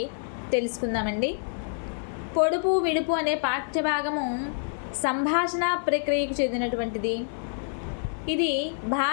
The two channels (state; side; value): silent; right; 60 dB below the other